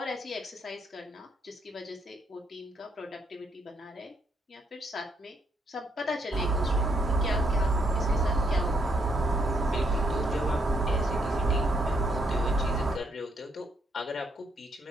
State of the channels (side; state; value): both; normal; correlation 0.74